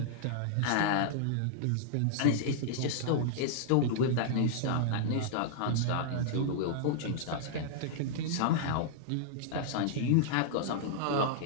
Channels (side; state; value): both; different; correlation -0.01